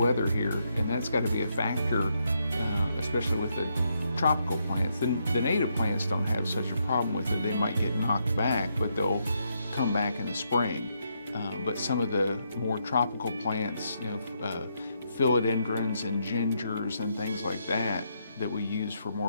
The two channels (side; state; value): both; inverted; correlation -0.78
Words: here, and that's got to be a factor, especially with the tropical plants. The native plants don't have such a problem with it. They might get knocked back, but they'll come back in the spring. But some of the more tropical plants, philodendrons and gingers and things like that we use for